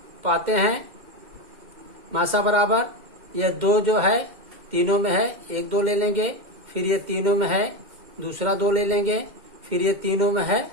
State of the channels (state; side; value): late; left; 2.1 ms